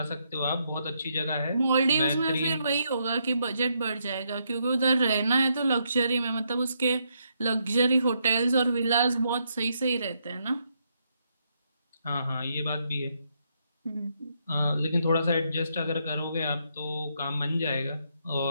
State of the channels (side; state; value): both; inverted; correlation -0.77